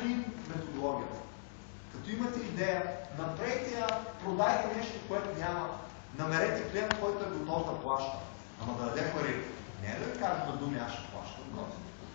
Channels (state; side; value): silent; right; digital silence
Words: методологията. Като имате идея, направете я, продайте нещо, което няма. Намерете клиент, който е готов да плаща. Ама да даде пари. Не е да ви кажа на думи, аз ще плащам.